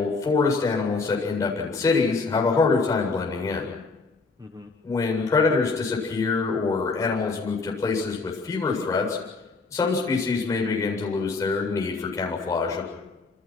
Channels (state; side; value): quieter; right; 4.0 dB